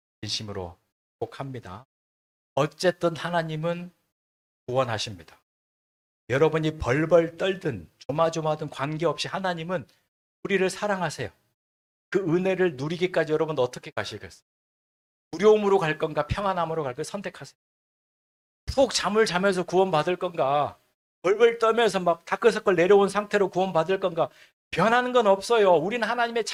진심으로 축복합니다. 어쨌든 하나님은 구원하십니다. 여러분이 벌벌 떨든 조마조마든 관계없이 하나님은 우리를 사랑하세요. 그 은혜를 누리기까지 여러분 어떻게 가시겠어요? 두려움으로 갈 건가 평안함으로 갈 건가 선택하세요. 푹 잠을 자면서 구원받을 건가 벌벌 떨면서 막 다크서클 내려온 상태로 구원받을 건가 변하는 건 없어요. 우리는 하나님의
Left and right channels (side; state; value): both; identical; correlation 1.00